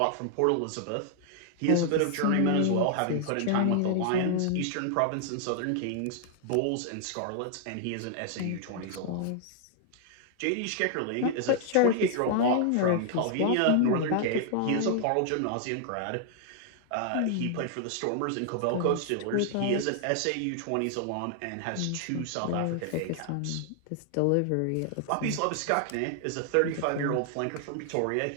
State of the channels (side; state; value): both; different; correlation 0.00